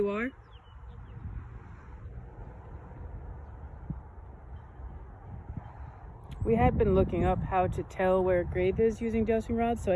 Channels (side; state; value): both; identical; correlation 1.00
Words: are? We had been looking up how to tell where a grave is using dowsing rods, so